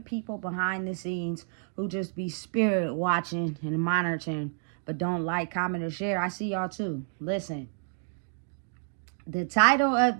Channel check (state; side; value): silent; left; 58 dB below the other